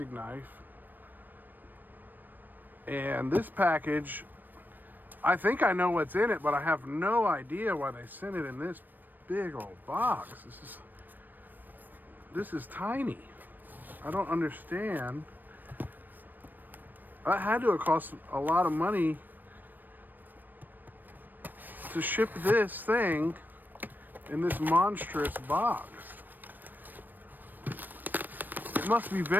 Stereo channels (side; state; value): left; late; 0.090 ms